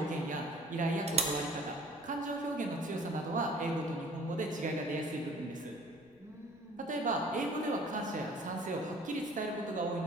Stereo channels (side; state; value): left; noise; rumble, 30 dB below the sound